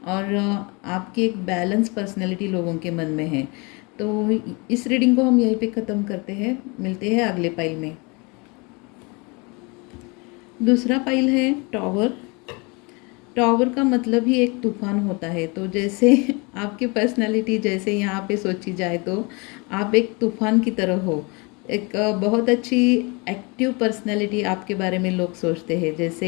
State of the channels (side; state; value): right; quieter; 29.1 dB